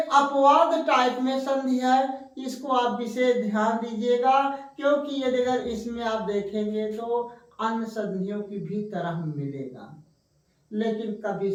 अपवाद टाइप में संधि है। इसको आप विशेष ध्यान दीजिएगा, क्योंकि यदि अगर इसमें आप देखेंगे तो अन्य संधियों की भी तरह मिलेगा, लेकिन कभी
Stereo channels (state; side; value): identical; both; correlation 1.00